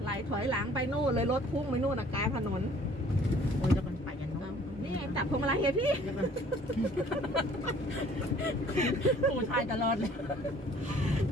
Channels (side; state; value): both; normal; correlation 0.55